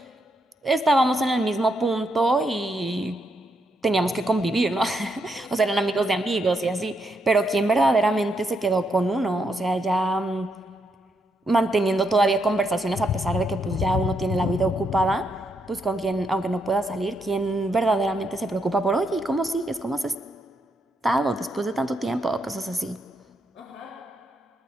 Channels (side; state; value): both; normal; correlation 0.79